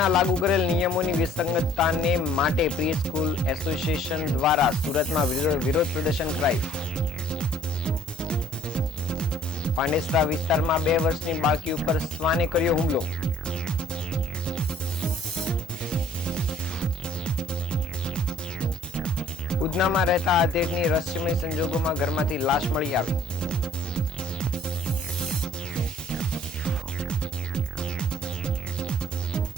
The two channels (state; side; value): normal; both; correlation 0.57